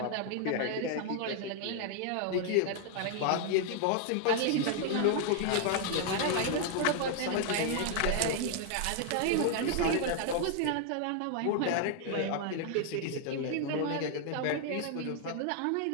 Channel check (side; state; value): both; different; correlation 0.00